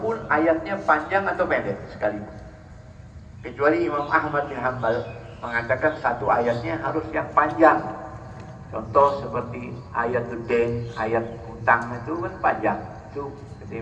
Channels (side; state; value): both; identical; correlation 1.00